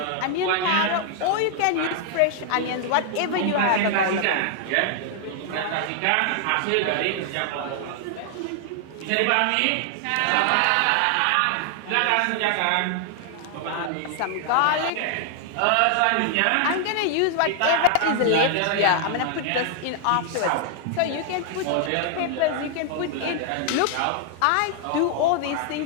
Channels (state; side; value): different; both; correlation 0.00